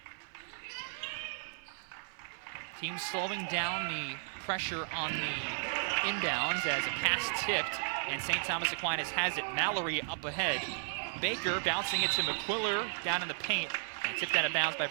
Team slowing down the pressure on the inbounds as a pass tipped. And St. Thomas Aquinas has it. Mallory up ahead. Baker bouncing it to McQuiller down in the paint. Tipped out of bounds by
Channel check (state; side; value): silent; left; 55 dB below the other